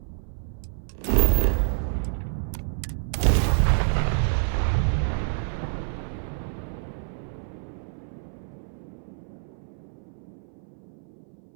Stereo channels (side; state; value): left; silent; 58 dB below the other